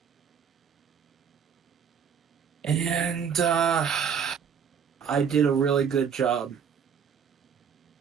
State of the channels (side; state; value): left; quieter; 7.2 dB